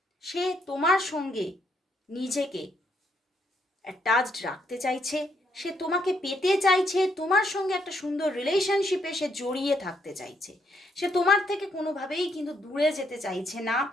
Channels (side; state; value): both; normal; correlation 0.74